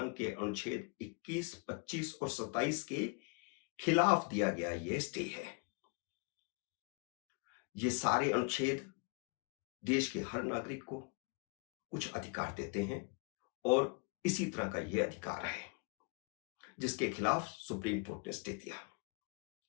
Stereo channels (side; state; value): right; quieter; 33.9 dB